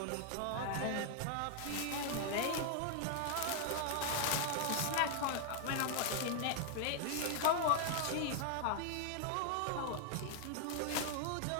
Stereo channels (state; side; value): different; both; correlation 0.00